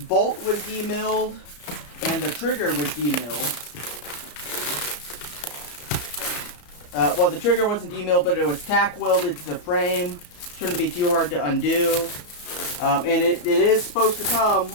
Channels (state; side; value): late; right; 34 ms